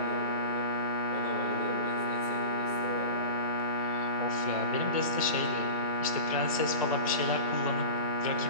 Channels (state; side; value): inverted; both; correlation -0.31